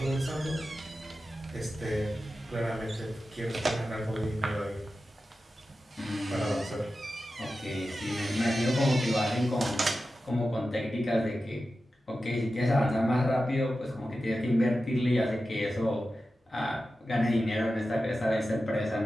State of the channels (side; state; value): both; normal; correlation 0.93